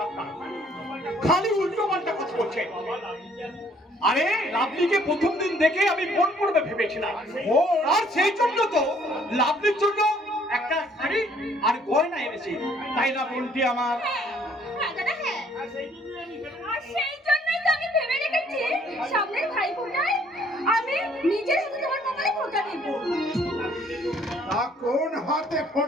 আপনার, খালি উল্টো পাল্টা কথা বলছে। আরে লাভলিকে প্রথম দিন দেখে আমি মন পড়বে ভেবেছিলাম, আর সেই জন্য তো লাভলির জন্য একটা শাড়ি আর গয়না এনেছি, তাই না বোনটি আমার? হ্যাঁ দাদা, হ্যাঁ। আর সেই জন্যই তো আমি ভেবে রেখেছি সামনের ভাইফোঁটায় আমি নিজের হাতে তোমার কপালে ফোঁটা দেব। তা কোন হাতে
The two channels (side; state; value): both; normal; correlation 0.61